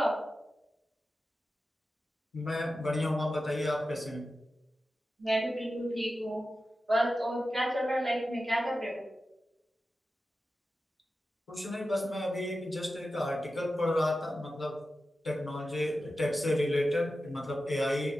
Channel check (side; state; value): both; normal; correlation 0.93